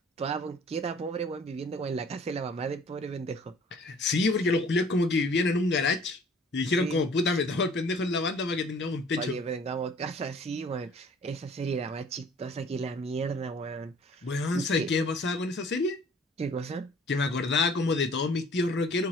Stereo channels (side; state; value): both; normal; correlation 0.52